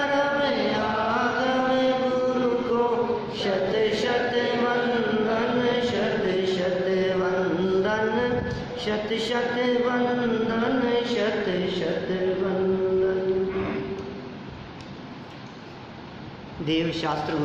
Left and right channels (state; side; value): identical; both; correlation 1.00